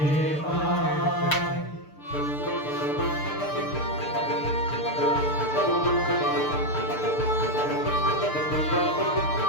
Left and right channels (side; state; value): right; late; 6.7 ms